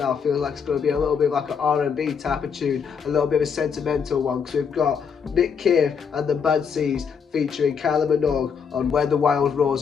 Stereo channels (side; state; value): right; quieter; 6.5 dB